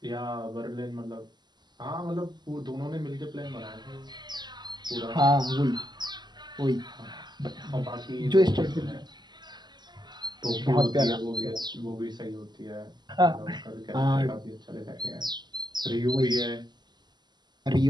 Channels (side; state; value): left; late; 0.21 ms